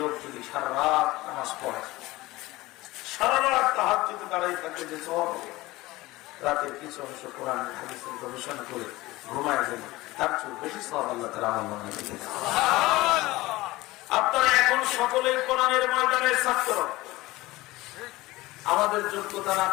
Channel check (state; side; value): quieter; right; 19.4 dB